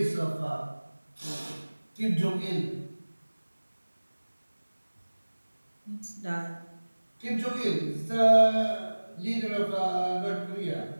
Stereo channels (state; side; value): inverted; both; correlation -1.00